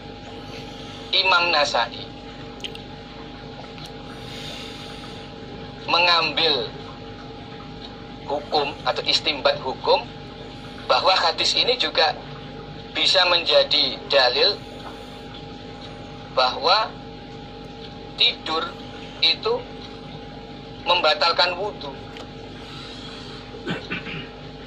Imam Nasai mengambil hukum atau istimbat hukum bahwa hadis ini juga bisa menjadi dalil bahwa tidur itu membatalkan wudhu.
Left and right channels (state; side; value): identical; both; correlation 1.00